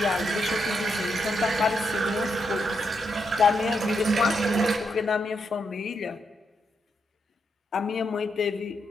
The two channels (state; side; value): normal; both; correlation 0.81